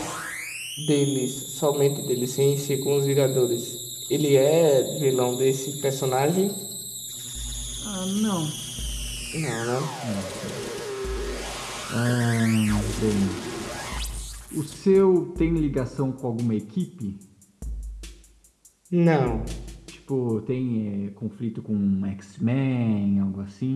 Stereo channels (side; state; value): both; identical; correlation 1.00